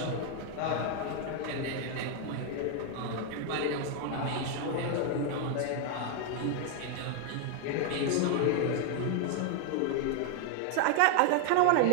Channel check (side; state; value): both; different; correlation 0.00